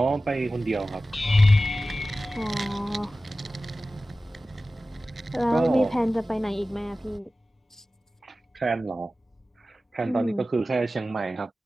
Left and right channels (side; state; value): both; normal; correlation 0.95